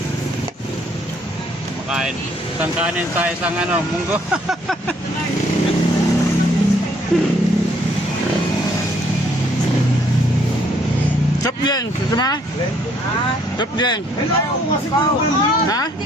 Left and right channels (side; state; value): both; normal; correlation 0.65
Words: Makain. Isang kanin sa isang munggo. Chop yan. Gusto mo? Chop yan. Ha? Hindi